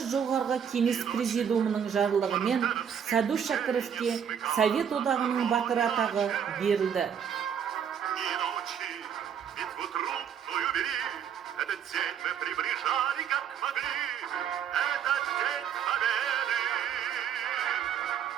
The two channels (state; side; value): quieter; left; 8.2 dB